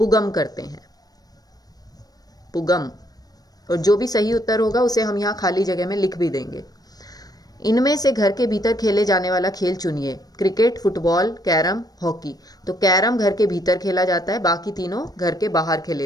करते हैं, पुगम। और जो भी सही उत्तर होगा उसे हम यहाँ खाली जगह में लिख भी देंगे। इनमें से घर के भीतर खेले जाने वाला खेल चुनिए। Cricket, football, carrom, hockey. तो कैरम घर के भीतर खेला जाता है, बाकी तीनों घर के बाहर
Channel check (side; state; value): right; late; 0.19 ms